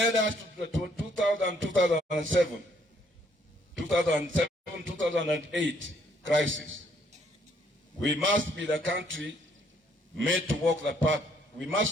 us to the 2007-2008 crisis. We must be the country made to walk the path. We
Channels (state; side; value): normal; both; correlation 0.67